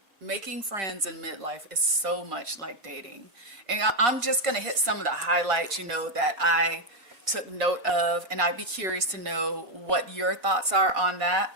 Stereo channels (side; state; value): left; late; 4.2 ms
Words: making friends in midlife is so much like dating. And I'm just going to hit some of the highlights, that I took note of, and I'd be curious to know what your thoughts are on that.